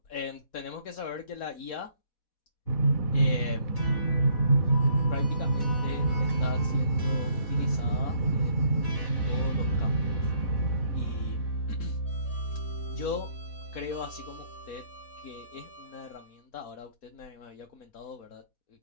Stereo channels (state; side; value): late; right; 4.1 ms